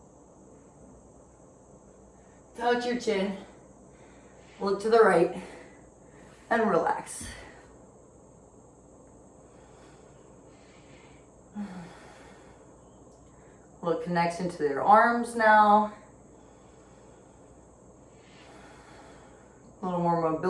Touch your chin. Look to the right and relax. Little connection to your arms now. A little more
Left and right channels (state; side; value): identical; both; correlation 1.00